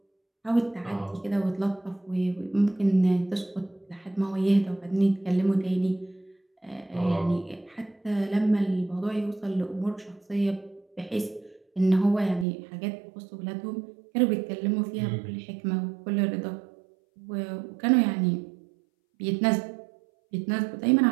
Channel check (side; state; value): left; drops out; at 12.5 s